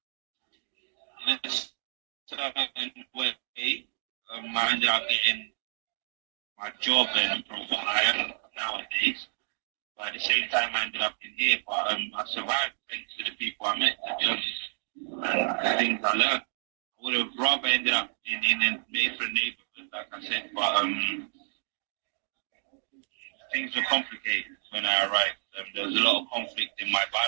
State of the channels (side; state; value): left; silent; digital silence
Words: in a certain way, I ended up getting my job and from what I am nowadays. But at the same time, I ended up in here. But I survived thanks to the people I met, to be honest, and the things I learned. I would have rather ended up in a different neighborhood, like I said. But things were complicated when I arrived. There was a lot of conflict in my